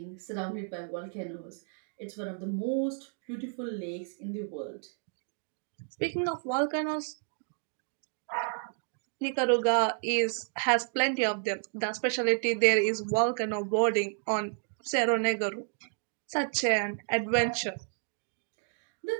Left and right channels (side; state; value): left; silent; 57 dB below the other